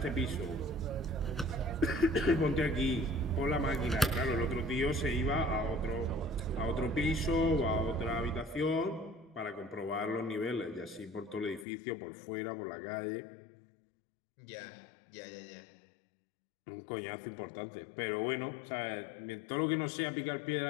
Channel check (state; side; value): drops out; right; at 11.7 s